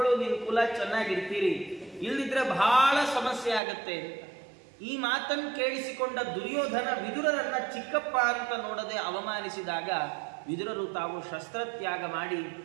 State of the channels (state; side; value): drops out; left; at 3.6 s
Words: ನಿನ್ನ ಕುಲ ಚೆನ್ನಾಗಿರ್ತೀರಿ, ಇಲ್ಲದಿದ್ರೆ ಬಹಳ ಸಮಸ್ಯೆ ಆಗತ್ತೆ. ಈ ಮಾತನ್ನು ಕೇಳಿಸಿಕೊಂಡ ದುರ್ಯೋಧನ ವಿದುರರನ್ನ ಚಿಕ್ಕಪ್ಪ ಅಂತ ನೋಡದೆ ಅವಮಾನಿಸಿದಾಗ ವಿದುರರು ತಾವು ಶಸ್ತ್ರತ್ಯಾಗ ಮಾಡಿ